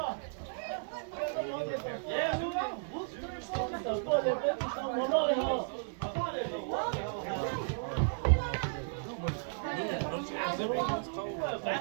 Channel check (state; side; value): silent; left; digital silence